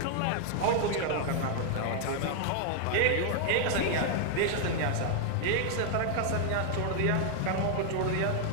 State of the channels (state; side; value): different; both; correlation 0.00